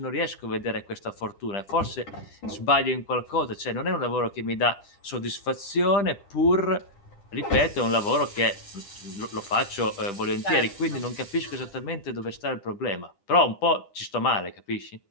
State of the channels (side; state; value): right; late; 10 ms